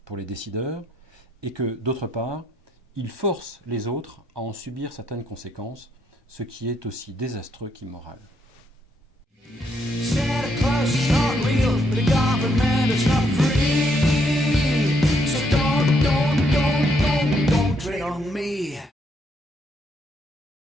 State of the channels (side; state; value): both; normal; correlation 0.73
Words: pour les décideurs, et que d'autre part, ils forcent les autres à en subir certaines conséquences, ce qui est aussi désastreux qu'immoral. Santa Claus is not real, but the government is not free. So don't tread on me.